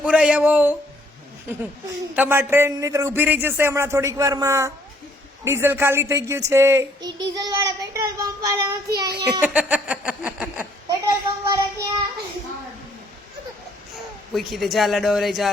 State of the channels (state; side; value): normal; both; correlation 0.64